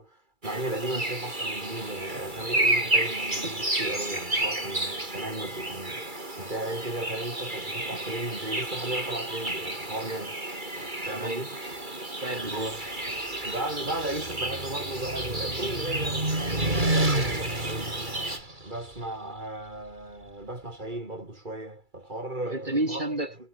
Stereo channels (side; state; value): left; late; 2.3 ms